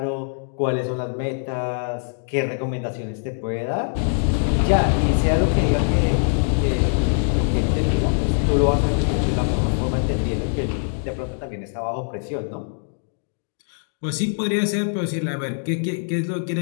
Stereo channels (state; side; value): silent; right; digital silence